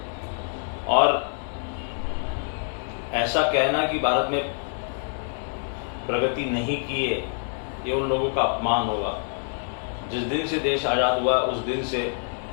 और ऐसा कहना कि भारत में प्रगति नहीं की है, ये उन लोगों का अपमान होगा। जिस दिन से देश आज़ाद हुआ उस दिन से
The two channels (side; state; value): right; silent; 61 dB below the other